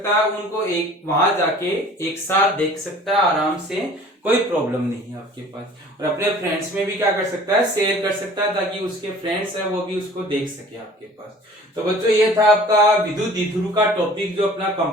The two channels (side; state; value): both; normal; correlation 0.48